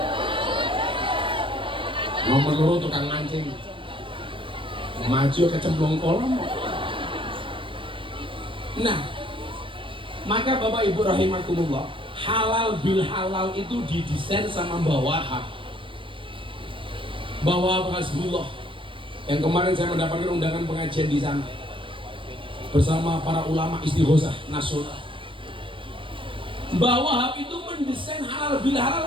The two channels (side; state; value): left; late; 0.25 ms